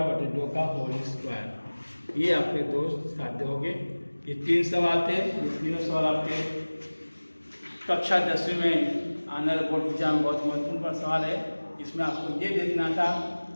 बटे 2 का होल स्क्वायर। ये आपके 2 साध्य हो गए। ये 3 सवाल थे, ये तीनों सवाल आपके कक्षा 10वीं में आने वाले बोर्ड एग्जाम में बहुत महत्वपूर्ण सवाल है। इसमें आपको ये देखना था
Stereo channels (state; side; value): inverted; both; correlation -1.00